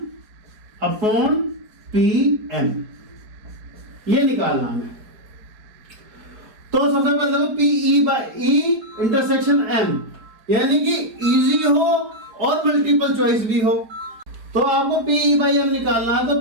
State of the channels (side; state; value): left; late; 4.6 ms